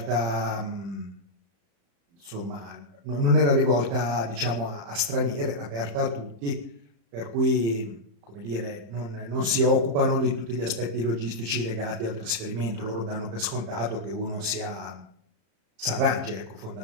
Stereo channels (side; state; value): left; late; 35 ms